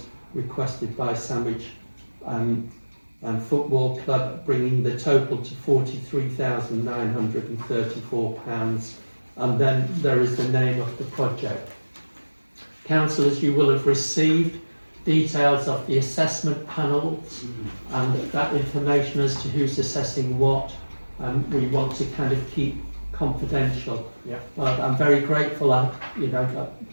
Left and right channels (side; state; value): both; inverted; correlation -1.00